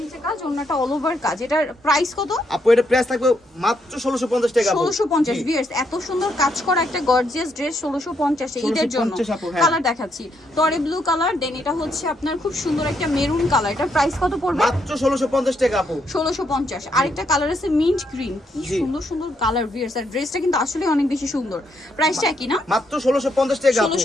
নিচে কাজ, ওন্নাটা অল ওভার কাজ। এটার প্রাইস কত আপু? এটা প্রাইস থাকবে মাত্র 1650 টাকা আপু। 1650। ভিউয়ার্স, এত সুন্দর কাজ করা একটা গর্জিয়াস ড্রেস 1650 এ ঈদের জন্য। কালার দেখাচ্ছি, টরে ব্লু কালার, দেন এটা হচ্ছে আপনার খুব সুন্দর একটা মেরুন কালার। এটার প্রাইস কত পড়বে? মাত্র 1650 টাকা আপু। 1650। আরেকটা কালার আছে মিন্ট গ্রিন, কি সুন্দর সুন্দর কালার। ভিউয়ার্স, আর ড্রেসটা কিন্তু আসলে অনেক বেশি সুন্দর। প্রাইসটা কি না? মাত্র 1650 টাকা আপু।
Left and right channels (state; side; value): normal; both; correlation 0.76